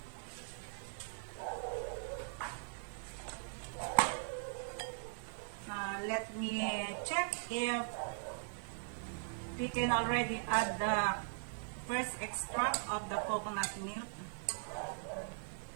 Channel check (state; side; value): silent; left; 51 dB below the other